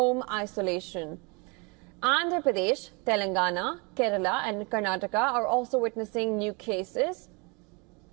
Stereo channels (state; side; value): quieter; left; 30.4 dB